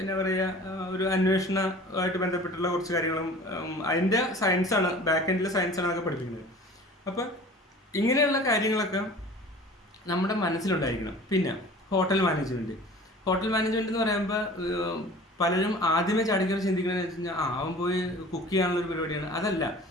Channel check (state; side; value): normal; both; correlation 0.43